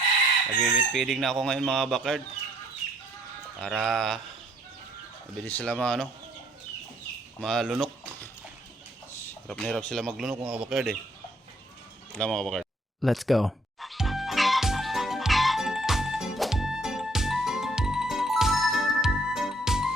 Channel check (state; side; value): normal; both; correlation 0.66